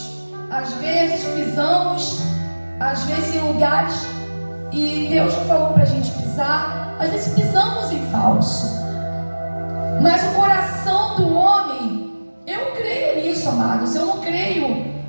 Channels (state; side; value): inverted; both; correlation -1.00